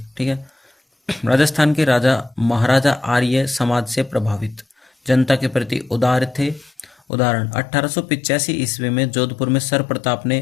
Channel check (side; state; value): right; drops out; at 7.0 s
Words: ठीक है, राजस्थान के राजा महाराजा आर्य समाज से प्रभावित, जनता के प्रति उदार थे। उदाहरण, 1885 ईस्वी में जोधपुर में सर प्रताप